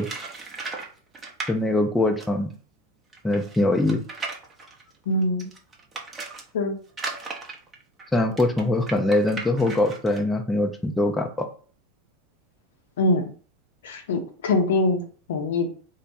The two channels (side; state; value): both; normal; correlation 0.38